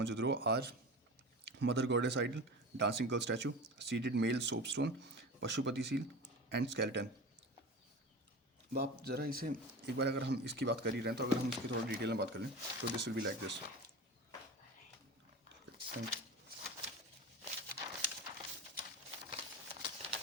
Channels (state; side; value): normal; both; correlation 0.30